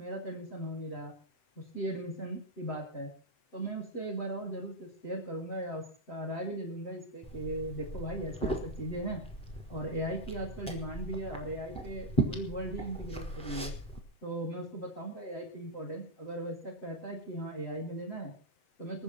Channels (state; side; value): late; right; 7.8 ms